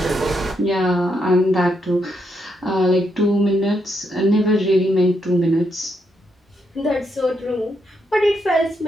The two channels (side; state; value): both; normal; correlation 0.79